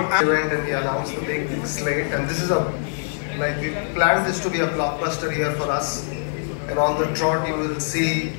Event, and we announced the big slate, and this is we planned this to be a blockbuster year for us. And on the trot, you will see,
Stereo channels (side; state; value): right; silent; 63 dB below the other